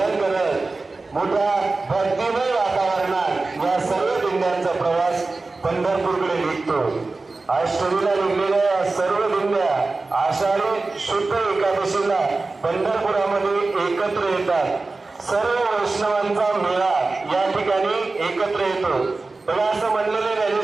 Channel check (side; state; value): left; quieter; 3.6 dB